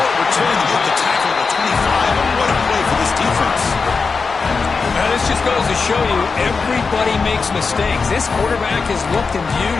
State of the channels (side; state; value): right; quieter; 4.8 dB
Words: return to get the tackle at the 25. And what a play for this defense. Now, this just goes to show you everybody makes mistakes. This quarterback is looked and viewed